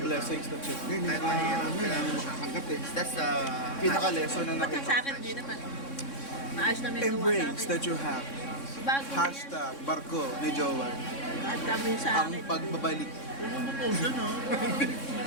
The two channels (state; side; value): late; right; 3.6 ms